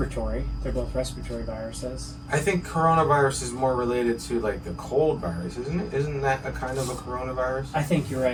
They're both respiratory viruses. I think coronavirus is more related to like the cold virus, isn't it? Isn't that a kind of a coronavirus? I think you're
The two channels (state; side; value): identical; both; correlation 1.00